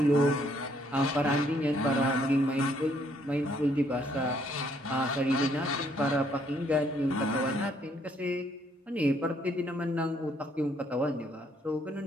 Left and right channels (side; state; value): both; normal; correlation 0.68